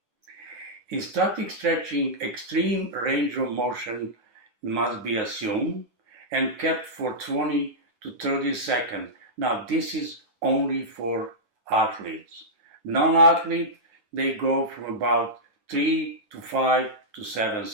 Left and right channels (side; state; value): left; late; 10 ms